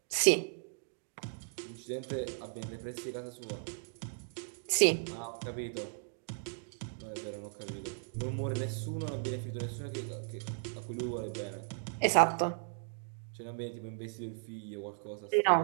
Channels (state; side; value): silent; left; digital silence